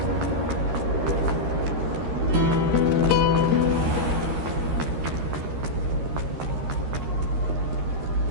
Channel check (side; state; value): left; late; 13 ms